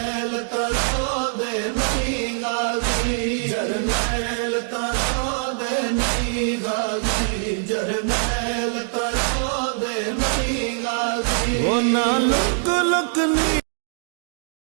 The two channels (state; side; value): silent; left; digital silence